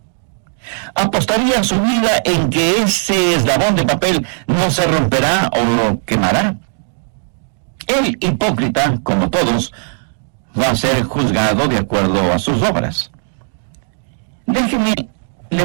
¿Apostaría su vida en que ese eslabón de papel no se romperá o lo quemará? El hipócrita, como todos, va a ser juzgado de acuerdo a sus obras. Déjeme, le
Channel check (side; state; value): left; silent; 57 dB below the other